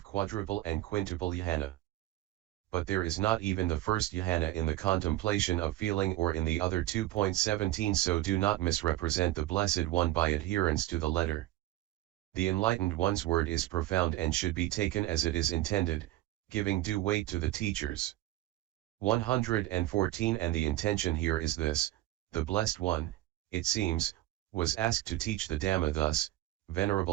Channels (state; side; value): quieter; left; 15.7 dB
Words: quadruple and quintuple jhana. But there is not even the first jhana in the contemplation of feeling or in the other 2.17, so do not misrepresent the Blessed One by adherence to the letter. The Enlightened One's word is profound and should be taken as it is intended, giving due weight to the teachers. 114. And the intention here is this: the Blessed One, it seems, was asked to teach the Dhamma thus: